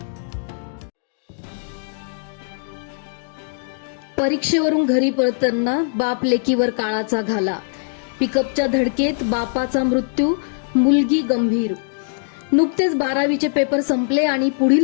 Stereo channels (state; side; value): silent; right; digital silence